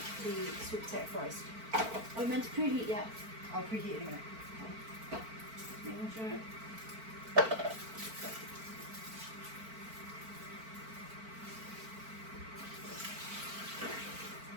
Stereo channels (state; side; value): late; left; 4.5 ms